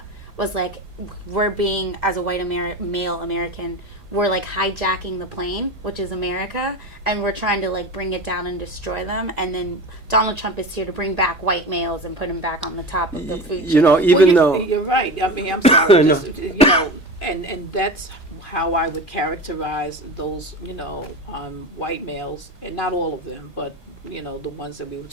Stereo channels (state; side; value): normal; both; correlation 0.28